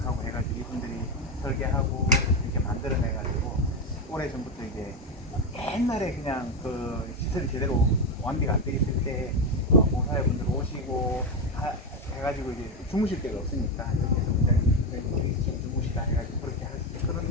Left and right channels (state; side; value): normal; both; correlation 0.10